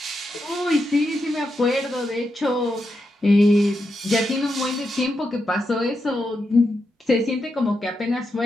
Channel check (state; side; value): normal; both; correlation 0.85